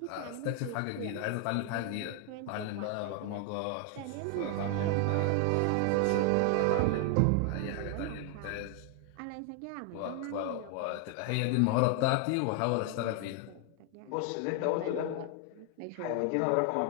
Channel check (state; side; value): different; both; correlation 0.00